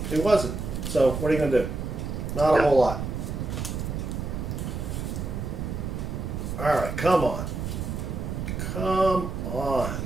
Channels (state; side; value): noise; right; rumble, 4 dB below the sound